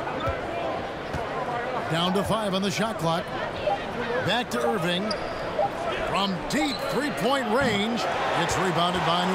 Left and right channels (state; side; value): identical; both; correlation 1.00